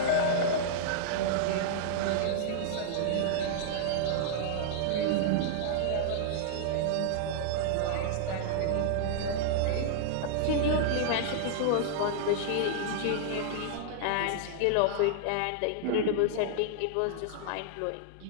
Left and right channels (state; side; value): different; both; correlation -0.01